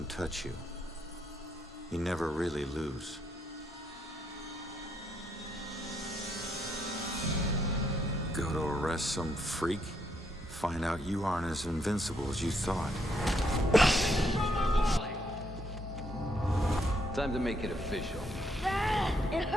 touch you. You never really lose. Go to arrest some freak, find out you aren't as invincible as you thought. Time to make it official. It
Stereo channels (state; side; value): normal; both; correlation 0.74